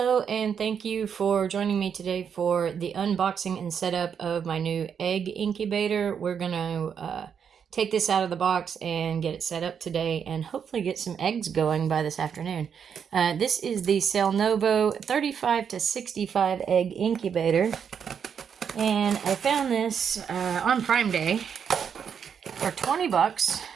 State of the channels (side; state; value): left; quieter; 7.4 dB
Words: and thank you for joining me today for the unboxing and setup of my new egg incubator. We're going to take this out of the box and get it set up today and hopefully get some eggs going by this afternoon. This is the Sailnovo 35 to 65 egg incubator, and I found this on Prime Day for 20 bucks.